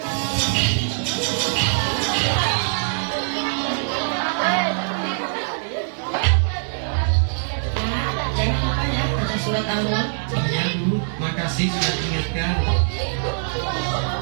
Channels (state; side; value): silent; left; digital silence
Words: Surat Al-Mulk. Ya Bu, makasih sudah diingatkan.